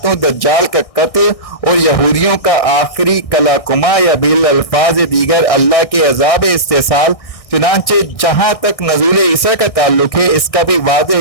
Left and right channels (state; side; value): late; right; 1.6 ms